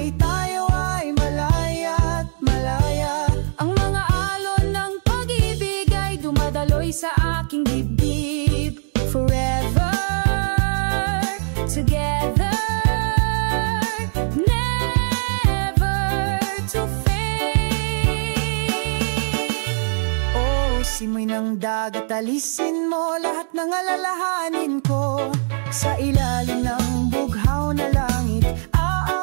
tayo ay malaya at malaya. Ang mga alon ng pag-ibig ay dumadaloy sa aking dibdib. Forever together, never to fade. Simoy ng dagat, alisin mo lahat ng alalahanin ko. Sa ilalim ng bughaw na langit,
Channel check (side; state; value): left; silent; digital silence